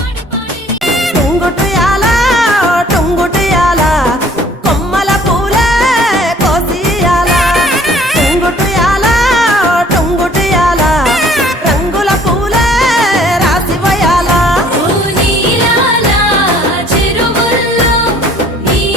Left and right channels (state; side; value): normal; both; correlation 0.55